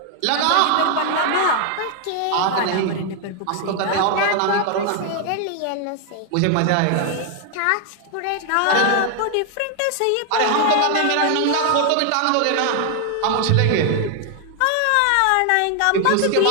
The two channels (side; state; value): both; different; correlation 0.00